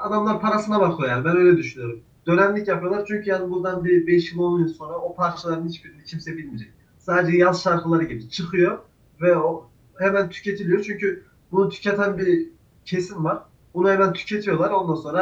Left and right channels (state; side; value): identical; both; correlation 1.00